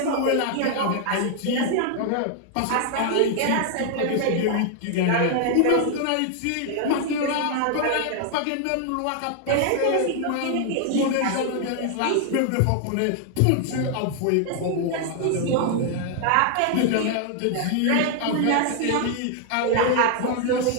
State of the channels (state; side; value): different; both; correlation 0.00